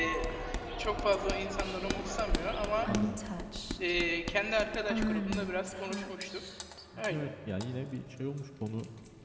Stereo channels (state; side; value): identical; both; correlation 1.00